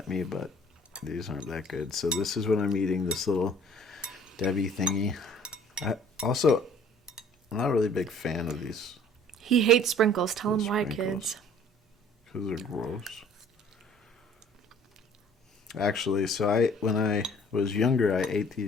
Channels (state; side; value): normal; both; correlation 0.53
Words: me, but these aren't that good. So this is what I'm eating, this little Debbie thingy. I'm not really a big fan of these. he hates sprinkles. Tell him why, Sprinkles. kids. Because they're gross. Actually, so when I was younger, I ate